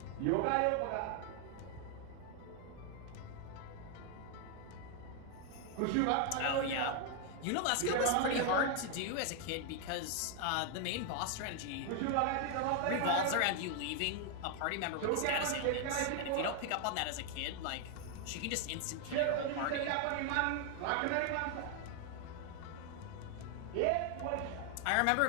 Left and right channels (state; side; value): different; both; correlation 0.01